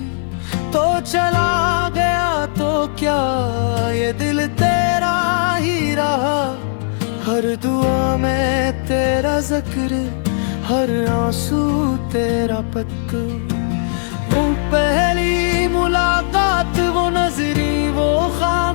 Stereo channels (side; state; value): right; silent; 56 dB below the other